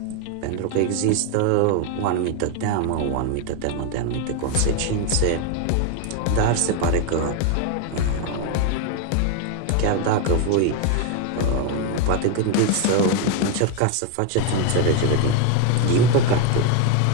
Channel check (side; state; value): both; different; correlation 0.01